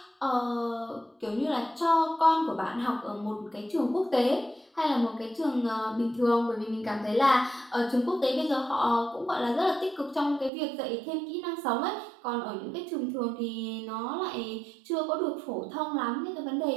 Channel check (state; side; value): drops out; left; at 10.5 s